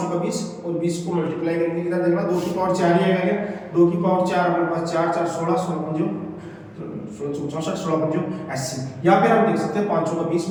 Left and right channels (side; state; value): both; identical; correlation 1.00